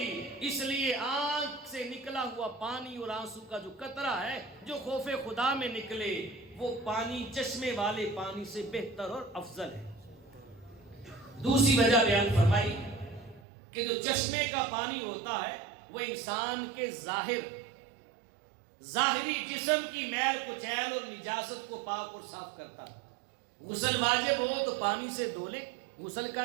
اس لیے آنکھ سے نکلا ہوا پانی اور آنسو کا جو قطرہ ہے، جو خوف خدا میں نکلے، وہ پانی چشمے والے پانی سے بہتر اور افضل ہے۔ دوسری وجہ بیان فرمائی کہ جو چشمے کا پانی ہوتا ہے وہ انسان کے ظاہری جسم کی میل کچیل اور نجاست کو پاک اور صاف کرتا ہے۔ غسل واجب ہو تو پانی سے دھو لے، غسل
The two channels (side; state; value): left; drops out; at 13.4 s